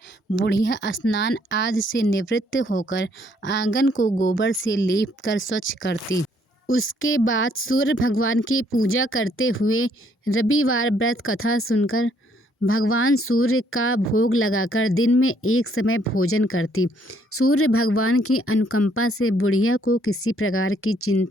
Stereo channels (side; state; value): both; normal; correlation 0.67